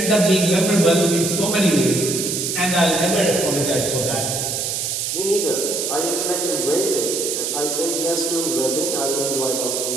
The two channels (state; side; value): noise; right; hiss, 1 dB below the sound